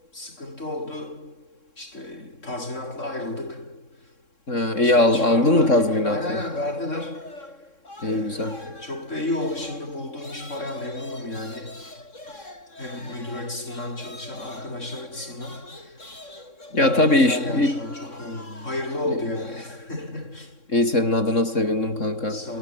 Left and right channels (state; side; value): late; right; 3.6 ms